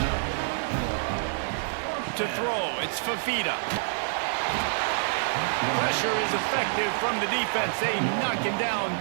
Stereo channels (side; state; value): left; silent; 60 dB below the other